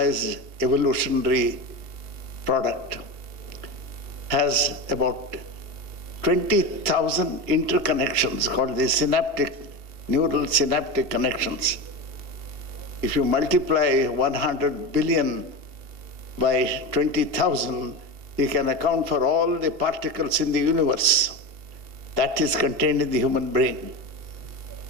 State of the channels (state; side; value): late; left; 2.8 ms